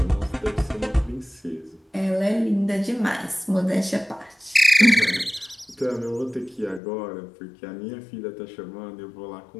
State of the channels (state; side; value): drops out; right; at 6.8 s